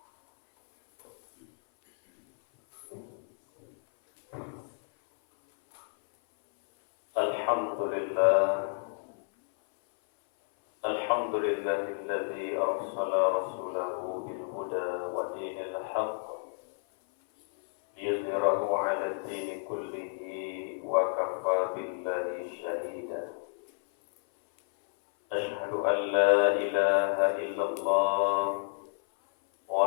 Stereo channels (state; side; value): silent; right; 58 dB below the other